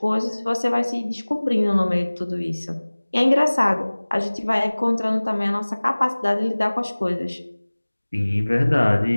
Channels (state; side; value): inverted; both; correlation -1.00